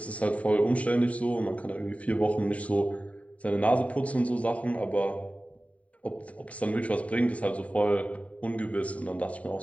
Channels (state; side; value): late; right; 0.067 ms